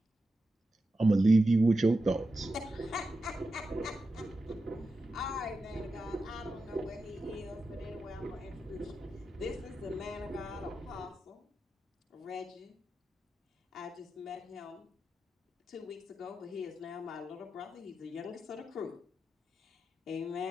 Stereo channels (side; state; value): both; normal; correlation 0.90